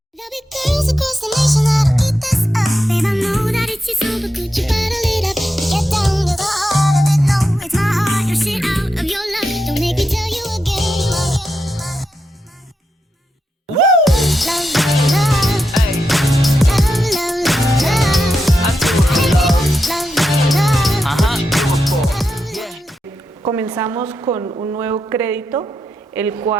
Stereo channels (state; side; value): normal; both; correlation 0.86